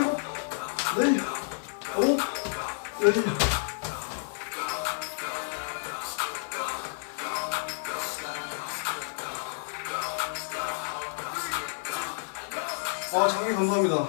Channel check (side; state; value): right; silent; digital silence